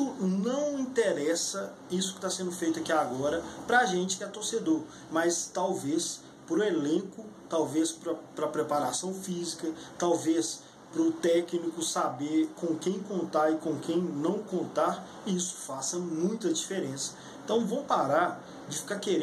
não interessa isso que está sendo feito aqui agora para a gente que é torcedor, mas talvez para o elenco, talvez para a preparação física, talvez para o técnico saber com quem contar e com quem não contar, isso faça muita diferença. Então, vamos parar de ficar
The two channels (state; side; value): identical; both; correlation 1.00